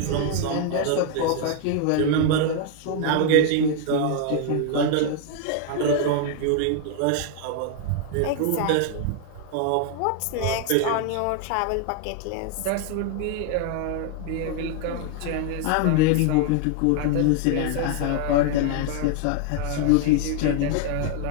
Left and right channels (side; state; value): both; different; correlation 0.00